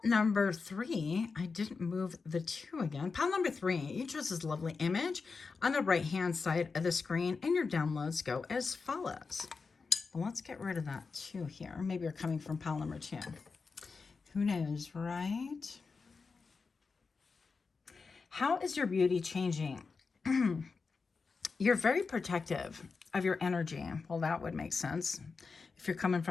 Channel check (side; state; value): right; quieter; 4.7 dB